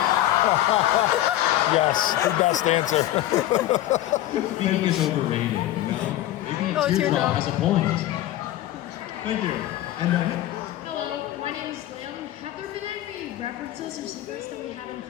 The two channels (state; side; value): quieter; right; 14.1 dB